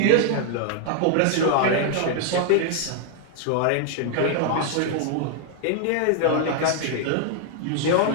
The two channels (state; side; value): different; both; correlation 0.00